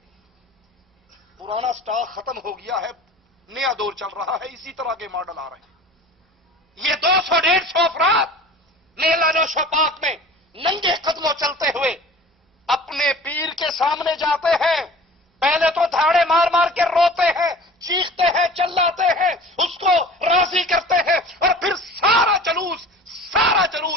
پرانا سٹاک ختم ہو گیا ہے، نیا دور چل رہا ہے، اسی طرح کے ماڈل آ رہے ہیں۔ یہ 200-150 افراد میلہ نوش و پاک میں ننگے قدموں چلتے ہوئے اپنے پیر کے سامنے جاتے ہیں، پہلے تو دھاڑے مار مار کے روتے ہیں، چیختے ہیں، چلاتے ہیں، اس کو راضی کرتے ہیں، اور پھر سارا جلوس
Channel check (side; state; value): both; normal; correlation 0.42